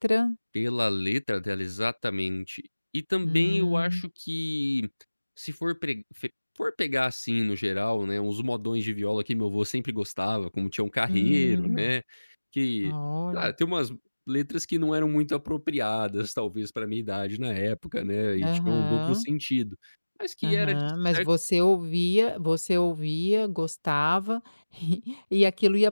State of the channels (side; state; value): both; inverted; correlation -1.00